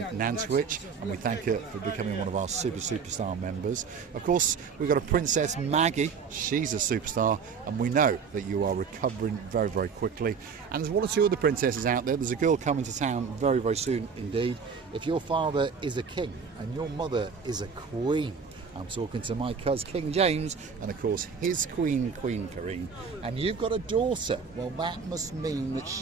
Nantwich, and we thank her for becoming one of our superstar members. Of course, we've got a Princess Maggie. She's a superstar, and we know that you are recovering very quickly. And there's one or two other princesses out there. There's a girl coming to town very soon indeed. If your father is a king and your mother is a queen, I'm talking to my cousin King James and of course his Queen Karine, and you've got a daughter. Well, that must mean that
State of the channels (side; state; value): left; quieter; 5.9 dB